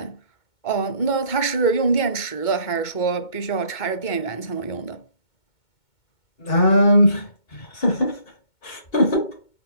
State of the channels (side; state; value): right; late; 2.2 ms